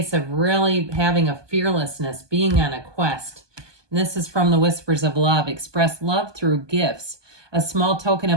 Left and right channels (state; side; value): late; left; 1.2 ms